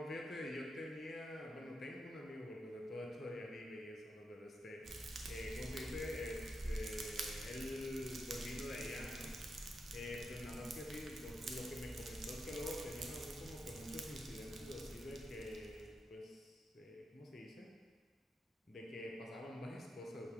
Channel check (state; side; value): normal; both; correlation 0.84